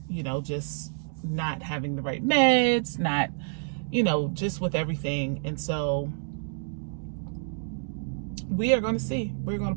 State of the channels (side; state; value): left; silent; digital silence